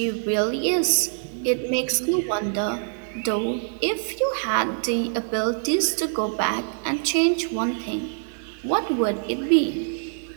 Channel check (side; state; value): left; silent; digital silence